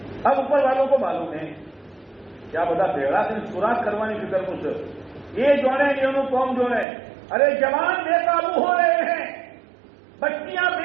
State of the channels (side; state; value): left; drops out; at 6.9 s